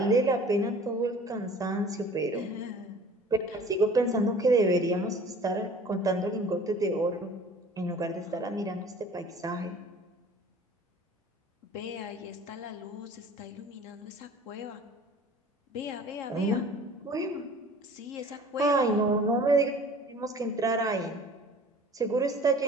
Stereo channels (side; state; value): both; normal; correlation 0.46